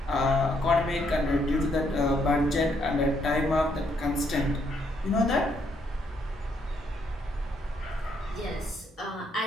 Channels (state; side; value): normal; both; correlation 0.73